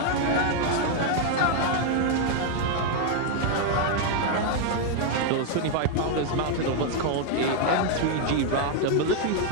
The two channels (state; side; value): different; both; correlation 0.00